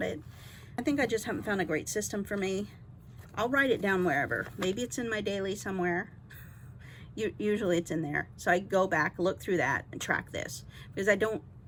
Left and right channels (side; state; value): both; identical; correlation 1.00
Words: it. I think I just haven't found a great system for me. I'll write it down wherever. Maybe it's in my daily somewhere. Usually it's in there. So I go back, look through that, and track this. Because I don't